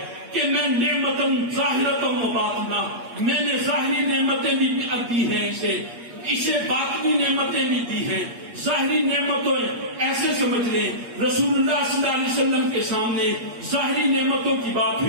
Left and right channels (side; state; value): left; late; 8.5 ms